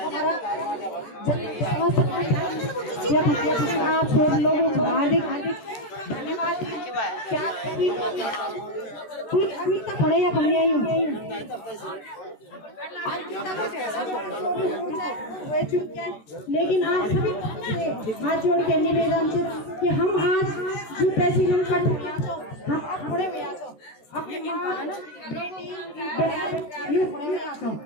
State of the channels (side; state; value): right; late; 13 ms